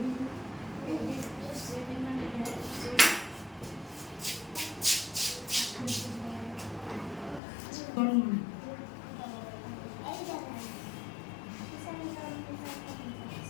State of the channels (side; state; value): right; drops out; at 7.4 s